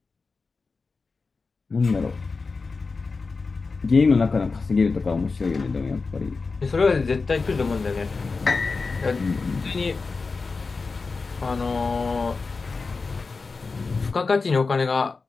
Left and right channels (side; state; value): right; quieter; 4.3 dB